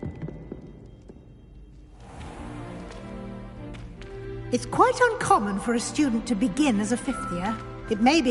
It's quite uncommon for a student to begin as a fifth year. It may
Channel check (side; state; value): both; identical; correlation 1.00